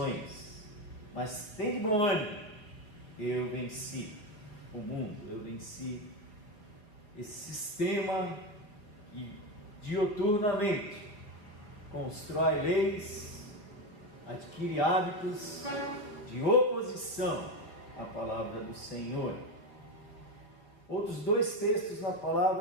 mas tende bom ânimo, eu venci o mundo, eu venci esse sistema que dioturnamente constrói leis, adquire hábitos de oposição à palavra do Senhor. Outros 2 textos na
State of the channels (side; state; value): right; late; 4.6 ms